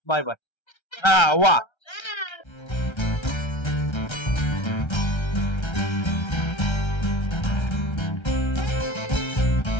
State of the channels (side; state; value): right; late; 1.3 ms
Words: बाय बाय वा